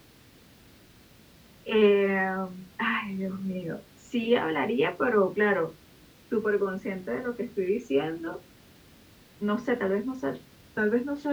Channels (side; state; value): both; identical; correlation 1.00